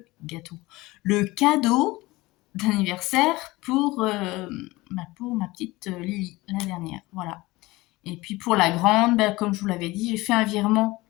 cadeau d'anniversaire pour ma petite Lily, la dernière. Voilà. Et puis pour la grande, comme je vous l'avais dit, j'ai fait un virement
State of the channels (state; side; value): quieter; right; 20.6 dB